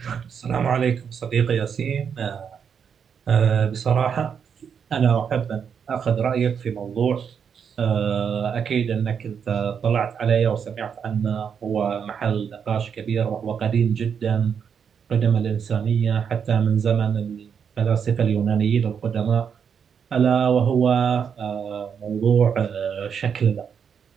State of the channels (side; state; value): left; quieter; 7.2 dB